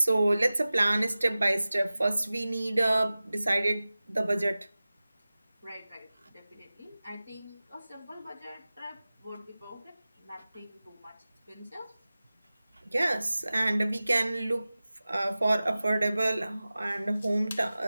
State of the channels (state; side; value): inverted; both; correlation -0.97